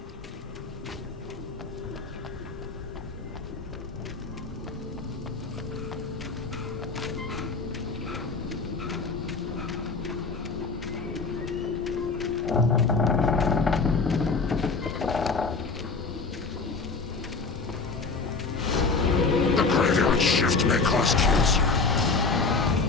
The graveyard shift may cause cancer.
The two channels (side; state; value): right; quieter; 4.3 dB